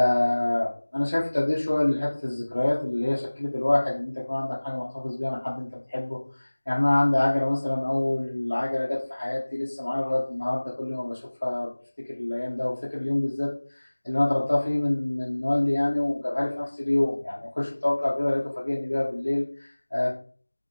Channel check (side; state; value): both; inverted; correlation -1.00